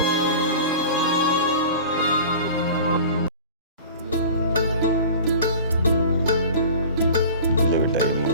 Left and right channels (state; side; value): inverted; both; correlation -0.39